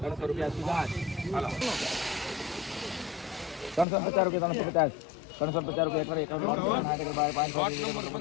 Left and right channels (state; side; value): drops out; right; at 3.9 s